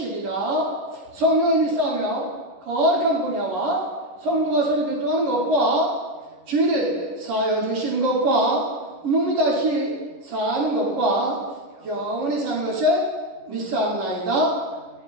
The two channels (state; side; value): late; left; 11 ms